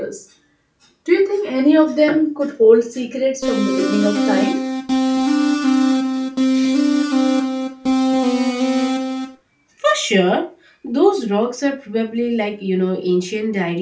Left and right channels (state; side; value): identical; both; correlation 1.00